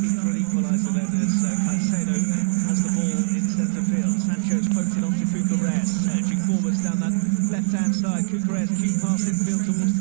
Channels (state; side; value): silent; left; digital silence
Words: for an equaliser then as Caicedo has the ball in centre field. Sancho's poked it onto Cucurella, surging forwards down that left-hand side. Cucurella keep passing field towards